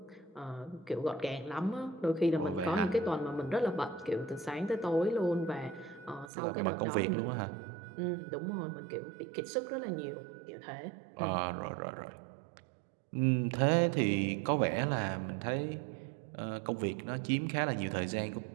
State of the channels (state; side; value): drops out; left; at 6.3 s